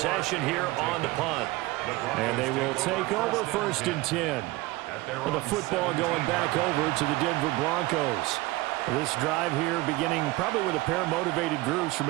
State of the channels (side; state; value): left; quieter; 20.3 dB